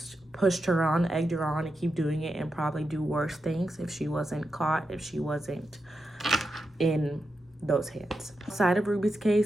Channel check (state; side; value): normal; both; correlation 0.87